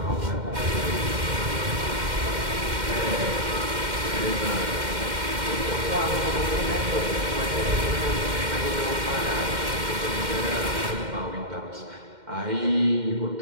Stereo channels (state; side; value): late; left; 2.1 ms